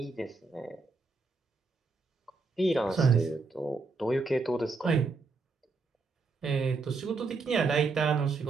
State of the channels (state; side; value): quieter; left; 4.1 dB